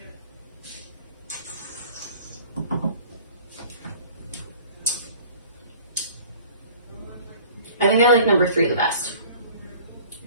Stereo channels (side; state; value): both; inverted; correlation -0.48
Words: I think I like number 3 the best.